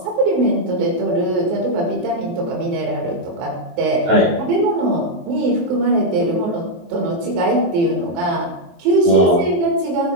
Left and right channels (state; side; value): late; left; 23 ms